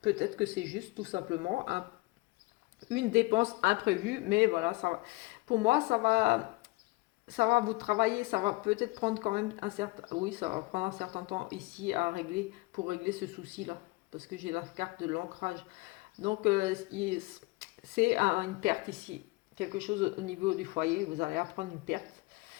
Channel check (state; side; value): quieter; right; 23.6 dB